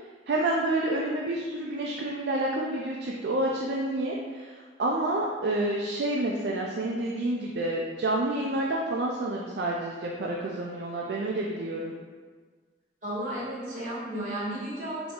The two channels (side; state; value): both; normal; correlation 0.18